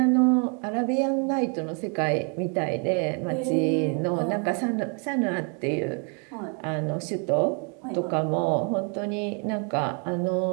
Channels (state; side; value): quieter; left; 37.4 dB